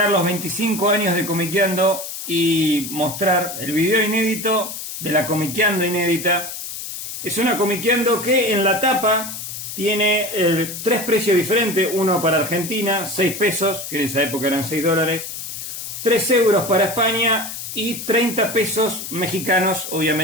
los 25 años de Comiqueando y mostrar el video inédito de la Comiqueando inédita. Es una Comiqueando que en la tapa tiene tres precios diferentes, uno para Argentina, 6 pesos, que en esa época eran 6 dólares, 3 euros para España y 30 pesos mexicanos,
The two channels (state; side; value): noise; left; hiss, 8 dB below the sound